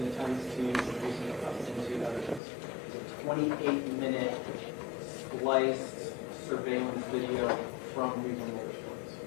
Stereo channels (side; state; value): right; drops out; at 2.4 s